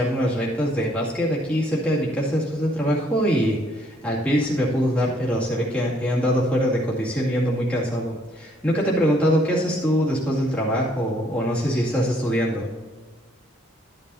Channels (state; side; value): normal; both; correlation 0.66